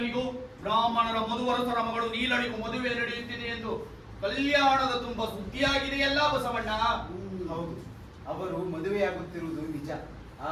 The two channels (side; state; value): both; identical; correlation 1.00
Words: ಬ್ರಾಹ್ಮಣರ ಮಧುವರಸರ ಮಗಳು ನೀಲನಿಗೂ ಮದುವೆ ನಡೆಯುತ್ತಿದೆ ಎಂದು ಕಲ್ಯಾಣದ ತುಂಬ ಸುದ್ದಿಯಾಗಿದೆಯಲ್ಲ ಬಸವಣ್ಣ? ಹೌದು, ಅವರು ಮದುವೆಯಾಗುತ್ತಿರುವುದು ನಿಜ.